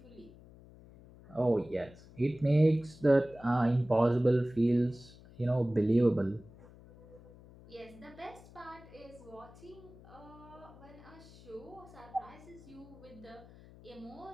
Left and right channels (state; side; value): noise; left; hum, 21 dB below the sound